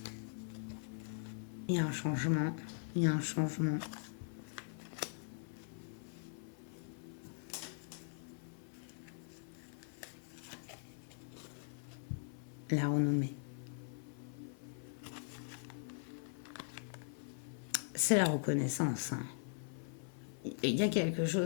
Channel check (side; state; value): right; silent; 50 dB below the other